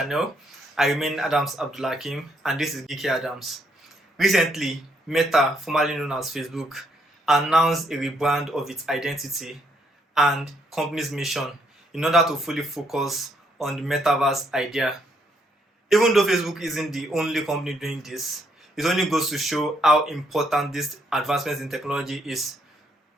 I remain Adams Abdulhakim and this is Geeky Adams. Recently, Meta, formerly known as Facebook, announced a rebrand of its identity and company's mission in order to fully focus on the Metaverse idea. Even though Facebook isn't the only company doing this, it only goes to show how important this advancements in technology is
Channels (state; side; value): normal; both; correlation 0.72